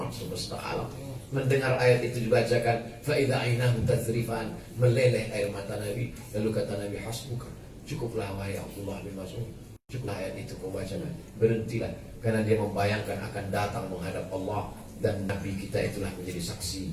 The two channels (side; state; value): both; identical; correlation 1.00